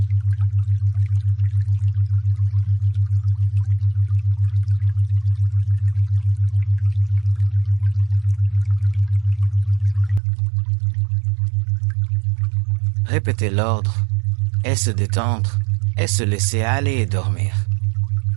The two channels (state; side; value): drops out; left; at 10.2 s